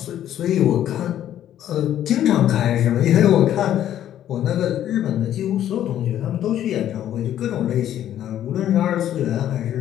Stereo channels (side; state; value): right; quieter; 11.3 dB